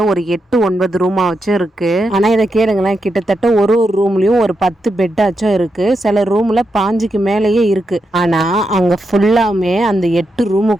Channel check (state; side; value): normal; both; correlation 0.85